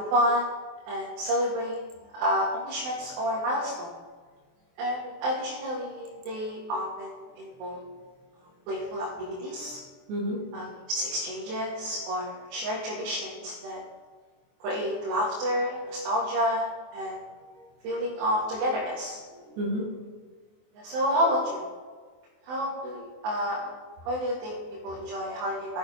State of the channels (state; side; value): late; left; 24 ms